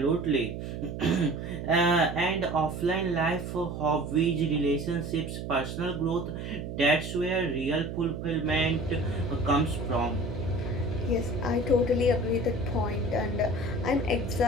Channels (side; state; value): right; noise; hum, 7 dB below the sound